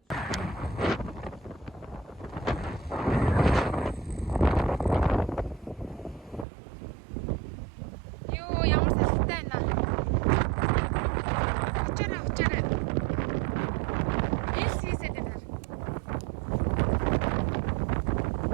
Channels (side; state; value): left; drops out; at 6.5 s